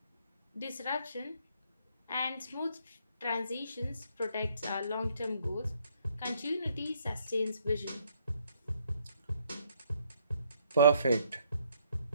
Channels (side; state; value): both; inverted; correlation -0.68